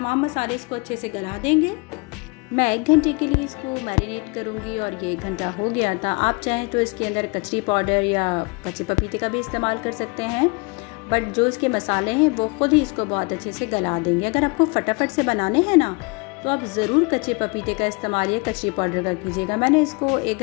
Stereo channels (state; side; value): quieter; right; 29.9 dB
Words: मसाले इसको अच्छे से गला देंगे। मैं 1 घंटे के लिए इसको मैरिनेट करूंगी और ये 1 घंटा हो गया था। आप चाहें तो इसके अंदर कचरी पाउडर या कच्चे पपीते का भी इस्तेमाल कर सकते हैं, बट जो इसके मसाले हैं वो खुद ही इसको बहुत अच्छे से गला देंगे। अगर आपको फटाफट से बनाने हैं ना तो आप ज़रूर कच्चे पपीते का इस्तेमाल या कचरी पाउडर का कीजिएगा। मैंने इसको 1